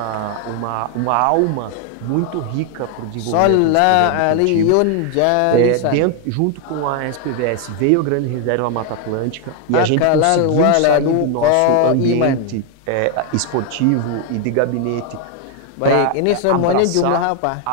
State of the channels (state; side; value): different; both; correlation 0.00